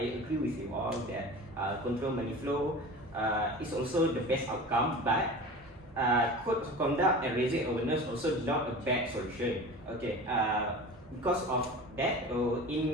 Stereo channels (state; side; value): normal; both; correlation 0.35